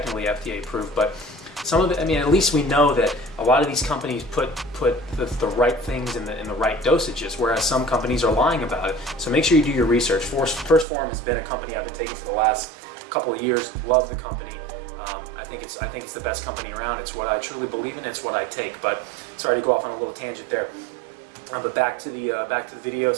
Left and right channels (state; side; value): drops out; left; at 10.9 s